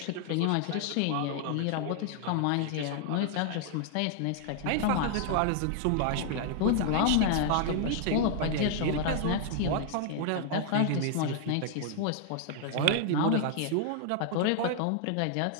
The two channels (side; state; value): both; different; correlation 0.00